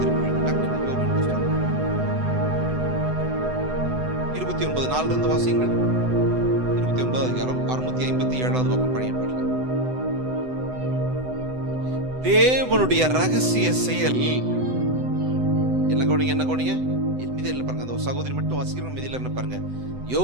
29:4 வாசியுங்கள். 29 அதிகாரம் 657வது பக்கம் பழைய பாடல். தேவனுடைய ரகசிய செயல் என்ன கவனிங்க, என்ன கவனிங்க. மீதியில் பாருங்க, அந்த சகோதரி மட்டும் வாசிக்கிறோம். மீதியில் என்ன பாருங்க,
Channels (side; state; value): left; late; 7.9 ms